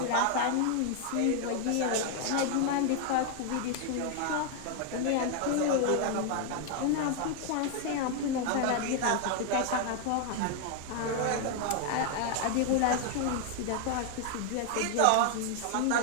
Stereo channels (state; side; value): different; both; correlation 0.00